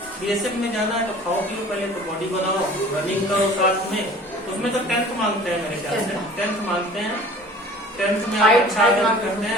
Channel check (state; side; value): normal; both; correlation 0.46